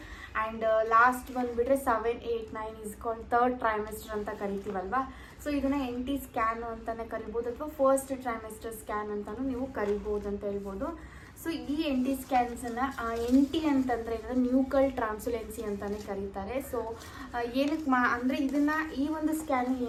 ಆ್ಯಂಡ್ ಲಾಸ್ಟ್ ಬಂದುಬಿಟ್ರೆ 7, 8, 9 ಇಸ್ ಕಾಲ್ಡ್ ಥರ್ಡ್ ಟ್ರೈಮೆಸ್ಟರ್ ಅಂತ ಕರಿತೀವಲ್ವಾ. ಸೊ ಇದನ್ನು NT ಸ್ಕ್ಯಾನು ಅಂತಲೇ ಕರಿಬೋದು ಅಥವಾ ಫಸ್ಟ್ ಟ್ರೈಮೆಸ್ಟರ್ ಸ್ಕ್ಯಾನ್ ಅಂತಲೂ ನೀವು ಕರಿಬೋದು ಅಂತ ಹೇಳ್ಬೋದು. ಸೊ ಈ NT ಸ್ಕ್ಯಾನ್ಸನ್ನು NT ಅಂತಂದರೆ ನ್ಯೂಕಲ್ ಟ್ರಾನ್ಸುಲೆನ್ಸಿ ಅಂತಲೇ ಕರೀತಾರೆ. ಸೊ ಏನಕ್ಕೆ ಅಂದರೆ ಈ ಒಂದು ಸ್ಕ್ಯಾನ್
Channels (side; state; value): both; identical; correlation 1.00